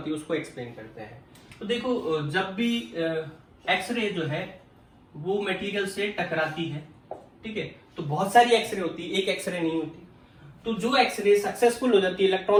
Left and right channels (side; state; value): both; identical; correlation 1.00